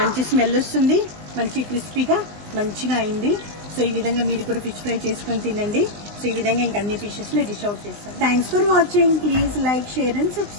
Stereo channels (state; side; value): late; left; 19 ms